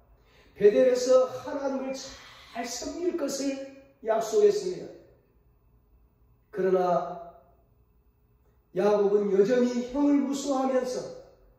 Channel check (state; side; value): identical; both; correlation 1.00